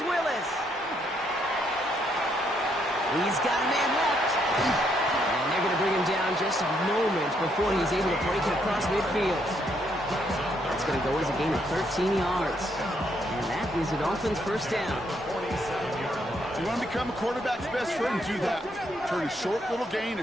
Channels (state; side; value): normal; both; correlation 0.73